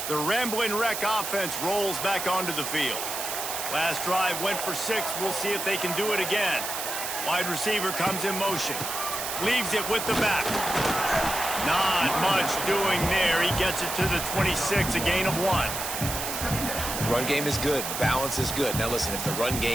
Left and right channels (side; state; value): right; noise; hiss, 4 dB below the sound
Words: The Rambling Wreck offense rolls back onto the field. Last drive went for 6. We'll see if they can do it again. Wide receiver comes in motion. Leaves it with the back. Not much doing there. He gets it to the 26, a gain of 1. Run game is good. Balance is good. Now listen, if the run